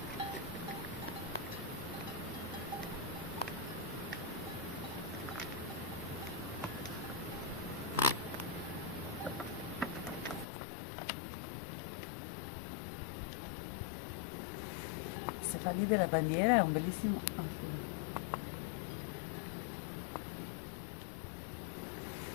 Se fa lì della bandiera è un bellissimo...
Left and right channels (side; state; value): right; drops out; at 10.5 s